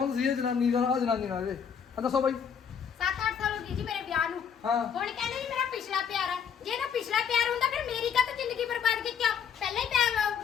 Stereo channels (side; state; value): right; quieter; 7.5 dB